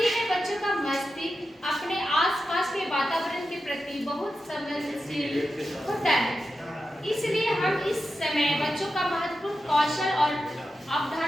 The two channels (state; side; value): normal; both; correlation 0.90